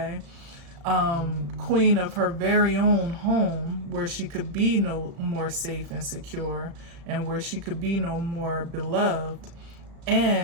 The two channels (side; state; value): left; late; 35 ms